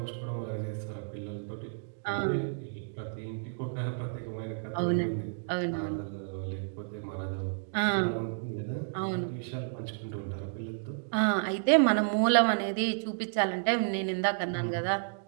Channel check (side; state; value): left; silent; digital silence